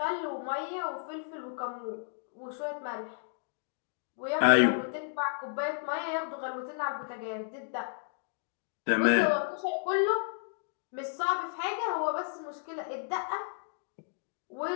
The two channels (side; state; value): right; silent; digital silence